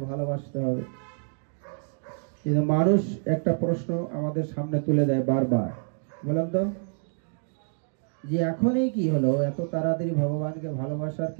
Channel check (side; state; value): left; silent; 60 dB below the other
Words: ভালোবাসতে হবে। কিন্তু মানুষ একটা প্রশ্ন আমাদের সামনে তুলে দেয় বারবার, বললাম তো যে এখনই কি হলো, এত তাড়াতাড়ি ভগবানকে ভালোবাসার